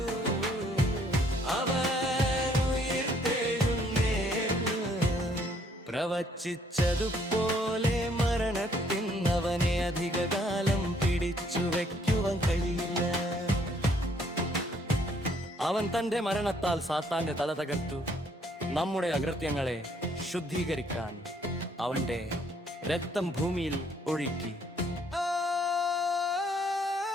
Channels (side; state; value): both; normal; correlation 0.65